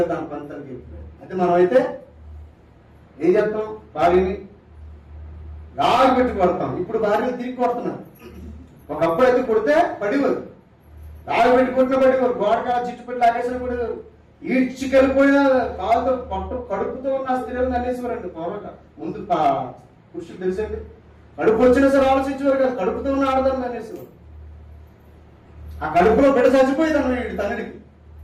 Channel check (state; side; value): identical; both; correlation 1.00